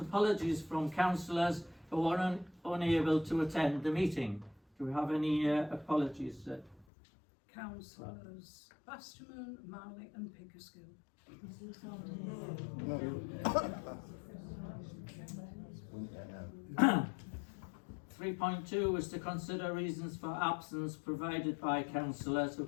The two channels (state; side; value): drops out; right; at 6.9 s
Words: from councillors who are unable to attend the meeting. Do we have any apologies? Councillors Basterman, Marley and Pickersgill. 3.2 is to consider reasons for absence provided by councillors who